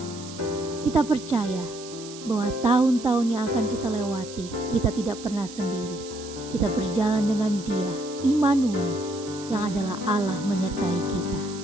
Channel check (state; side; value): noise; right; hiss, 15 dB below the sound